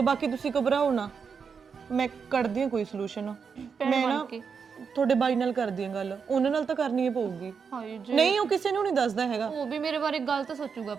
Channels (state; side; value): quieter; left; 6.1 dB